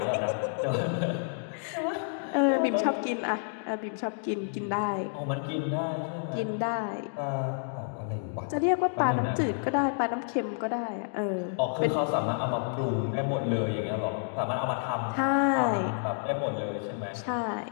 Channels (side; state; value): right; silent; digital silence